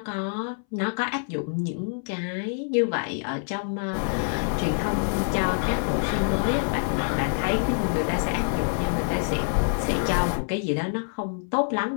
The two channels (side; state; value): right; silent; 61 dB below the other